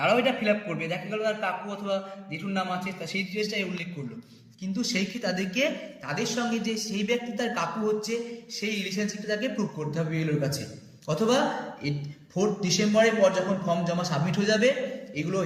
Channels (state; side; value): identical; both; correlation 1.00